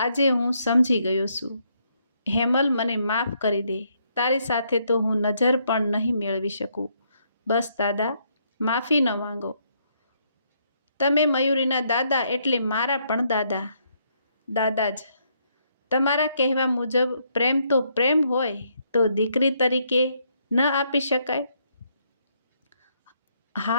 આજે હું સમજી ગયો છું. હેમલ, મને માફ કરી દે. તારી સાથે તો હું નજર પણ નહીં મેળવી શકું. બસ દાદા, માફી ન માંગો. તમે મયુરીના દાદા એટલે મારા પણ દાદા જ. તમારા કહેવા મુજબ પ્રેમ તો પ્રેમ હોય તો દીકરી તરીકે ન આપી શકાય?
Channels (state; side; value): inverted; both; correlation -0.73